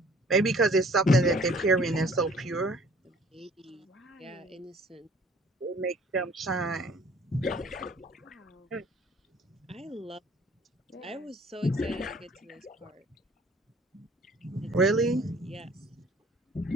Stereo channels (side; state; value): both; normal; correlation 0.54